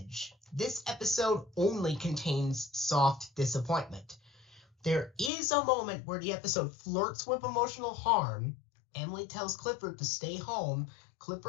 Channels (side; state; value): right; drops out; at 5.3 s